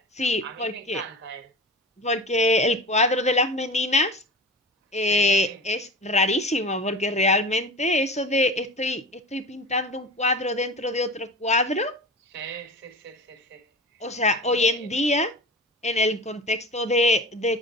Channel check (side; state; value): both; normal; correlation 0.32